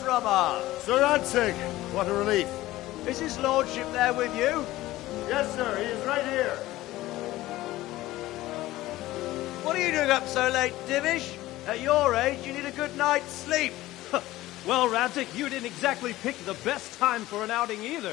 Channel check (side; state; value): right; quieter; 16.8 dB